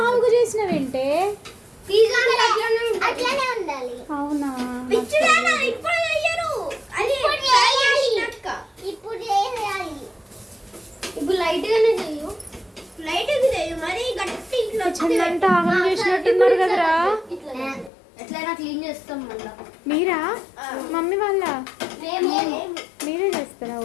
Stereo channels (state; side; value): drops out; right; at 17.9 s